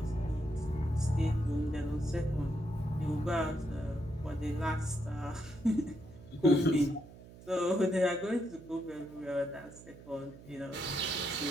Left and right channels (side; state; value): right; noise; hum, 18 dB below the sound